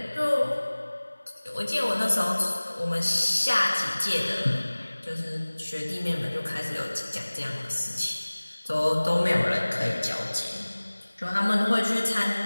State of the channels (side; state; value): both; inverted; correlation -1.00